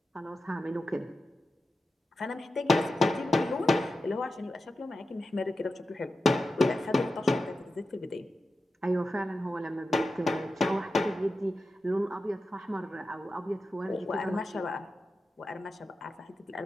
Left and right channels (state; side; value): normal; both; correlation 0.91